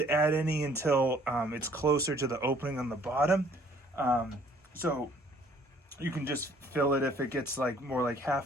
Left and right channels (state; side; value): normal; both; correlation 0.59